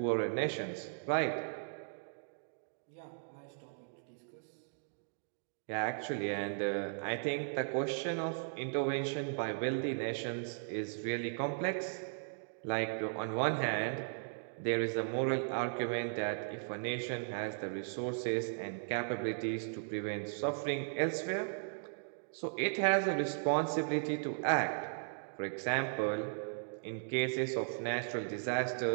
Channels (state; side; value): silent; left; digital silence